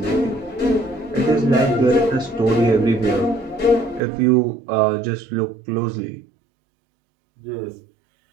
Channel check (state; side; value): drops out; left; at 4.0 s